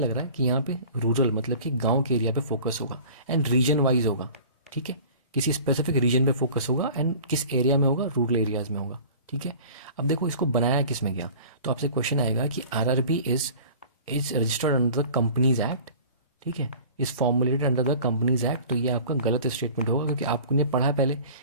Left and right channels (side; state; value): both; inverted; correlation -0.44